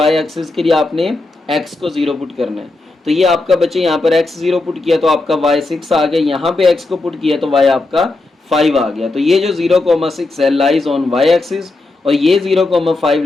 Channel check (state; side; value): quieter; right; 3.1 dB